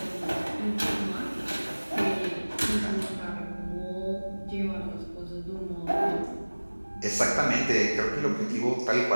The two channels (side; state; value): both; inverted; correlation -1.00